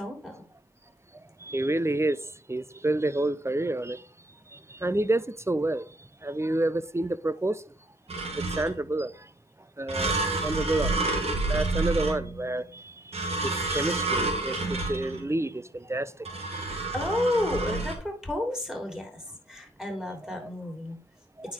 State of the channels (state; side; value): normal; both; correlation 0.68